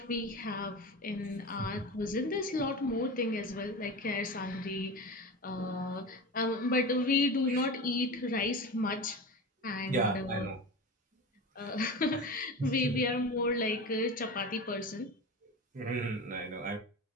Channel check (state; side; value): normal; both; correlation 0.28